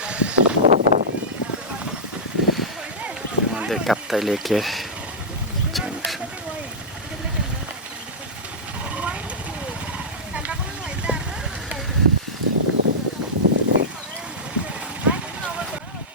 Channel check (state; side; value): normal; both; correlation -0.11